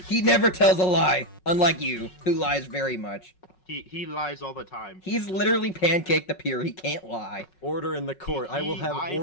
never tells a lie, unlike you, who lies very much. He lies all the time. He's literally Pancake the Pure, he can't lie. Order in the court. I will have I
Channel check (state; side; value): late; right; 5.4 ms